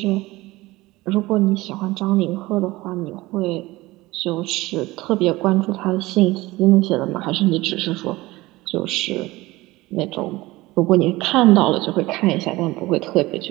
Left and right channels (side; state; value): left; quieter; 19.6 dB